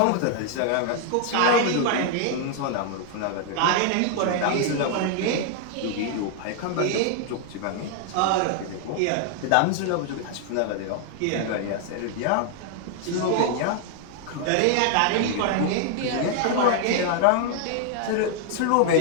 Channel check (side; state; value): both; different; correlation 0.00